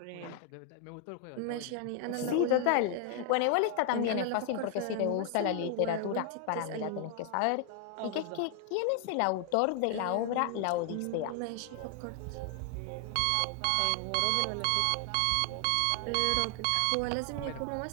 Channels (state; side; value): different; both; correlation 0.00